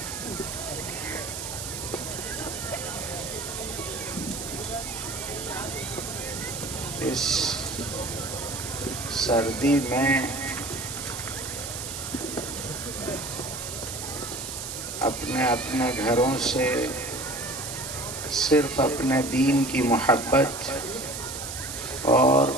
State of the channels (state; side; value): noise; right; hiss, 7 dB below the sound